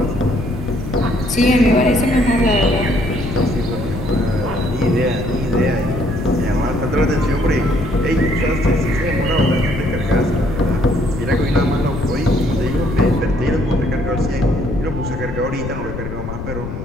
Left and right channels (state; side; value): noise; left; rumble, 7 dB below the sound